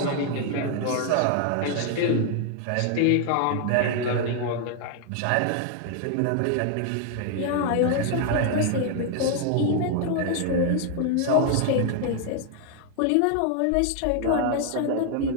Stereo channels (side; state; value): both; different; correlation 0.00